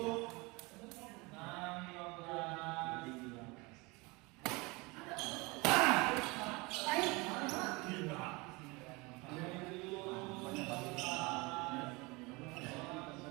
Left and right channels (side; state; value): left; quieter; 25.4 dB